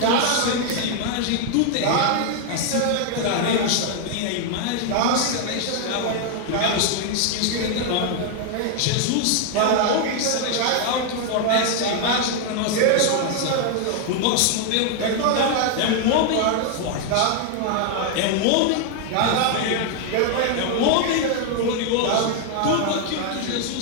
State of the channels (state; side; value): different; both; correlation 0.00